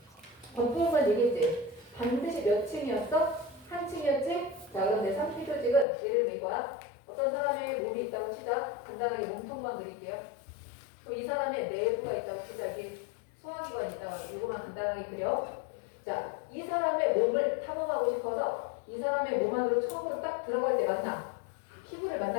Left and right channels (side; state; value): right; drops out; at 5.9 s